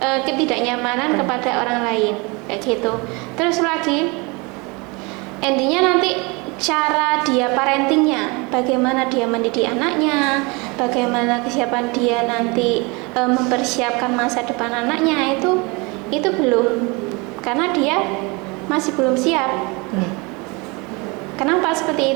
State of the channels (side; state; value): left; quieter; 27.8 dB